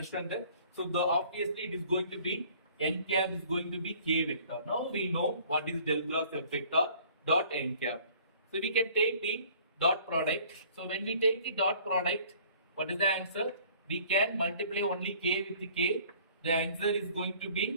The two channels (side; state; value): both; inverted; correlation -0.53